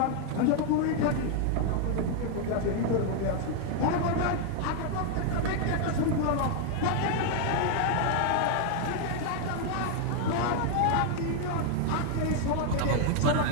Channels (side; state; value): both; different; correlation 0.00